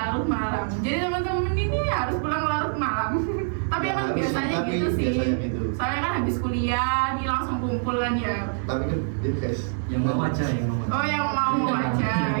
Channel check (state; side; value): silent; left; 62 dB below the other